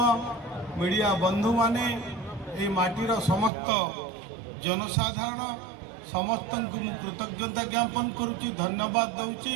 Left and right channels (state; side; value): drops out; left; at 3.5 s